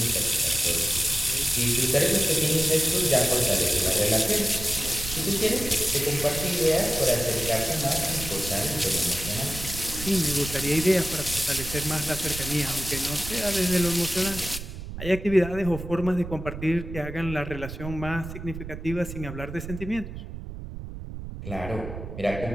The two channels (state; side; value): noise; right; rumble, 9 dB below the sound